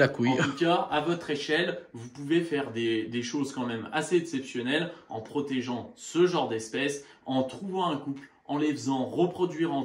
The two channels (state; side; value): identical; both; correlation 1.00